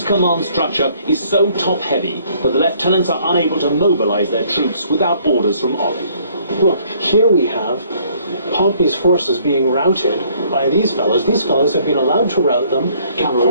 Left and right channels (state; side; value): inverted; both; correlation -0.61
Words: command structure is so top-heavy that the lieutenants are unable to mobilize their troops without orders from Ollie. Look, here we have Pompey's forces being routed by these fellows. These fellows have been allowed to rout them.